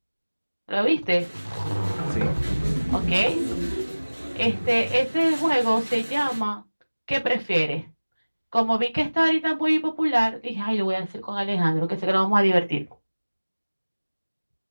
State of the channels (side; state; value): both; inverted; correlation -1.00